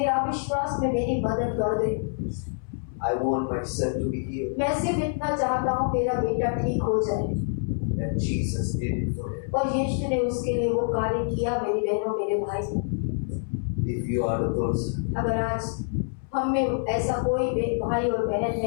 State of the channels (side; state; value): right; silent; 61 dB below the other